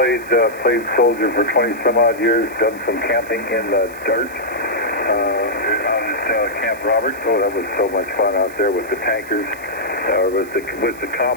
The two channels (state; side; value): noise; right; hiss, 21 dB below the sound